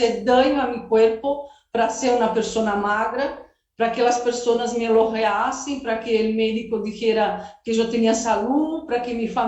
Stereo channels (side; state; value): both; identical; correlation 1.00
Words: daño a mi cuerpo para ser una persona magra, para que las personas me elogiasen, para que el médico dijera que yo tenía salud, para que mi